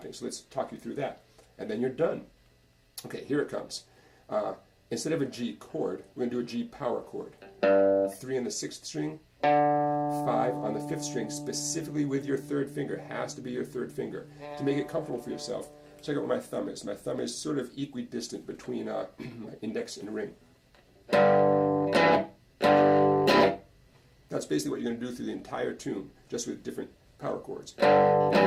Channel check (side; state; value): both; identical; correlation 1.00